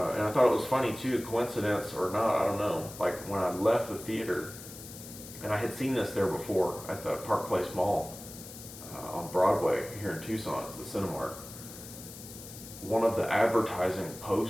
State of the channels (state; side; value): noise; left; hiss, 14 dB below the sound